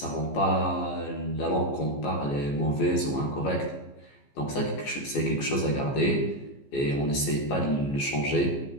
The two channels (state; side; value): late; right; 14 ms